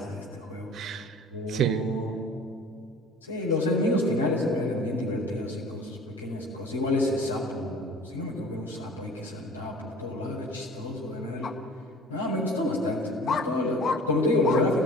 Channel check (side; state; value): both; normal; correlation 0.45